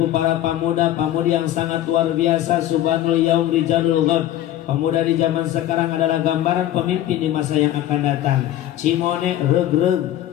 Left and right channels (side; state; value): right; quieter; 12.7 dB